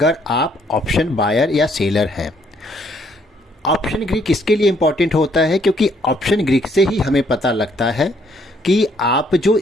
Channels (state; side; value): normal; both; correlation 0.67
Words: आप ऑप्शन बायर या सेलर हैं। ऑप्शन ग्रीक इसके लिए इम्पॉर्टेंट होता है क्योंकि ऑप्शन ग्रीक से ही हमें पता लगता है कि आप जो